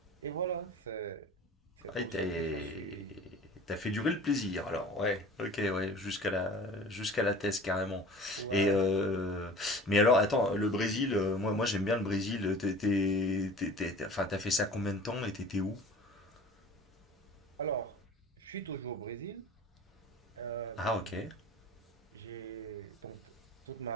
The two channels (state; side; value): normal; both; correlation 0.42